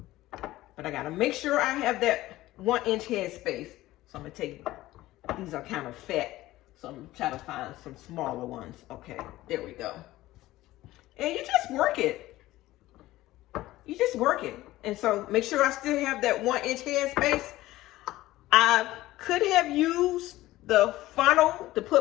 But I got to make sure I have that 1-inch head space. So I'm going to take, these are kind of fat. So I'm going to try to find some smaller ones. Okay, there we go. And you just work it. You just work it. And so make sure I still have that 1-inch head space. I could have used the funnel to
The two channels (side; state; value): right; quieter; 16.7 dB